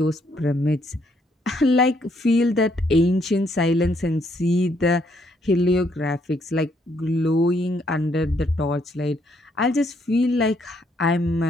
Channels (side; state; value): both; normal; correlation 0.71